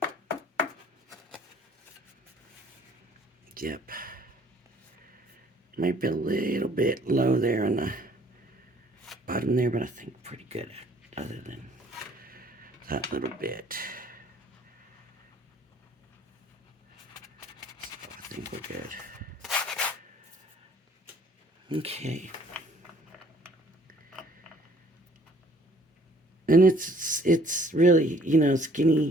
Yep. Might be a little bit low there on the bottom there, but I think pretty good other than that little bit. So I think we're good. Okay. And it's really, you know,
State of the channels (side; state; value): both; normal; correlation 0.58